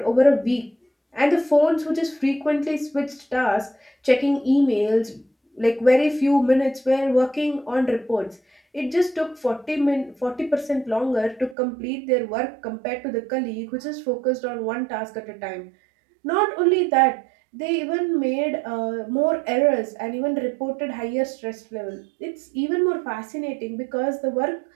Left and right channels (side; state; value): left; drops out; at 11.6 s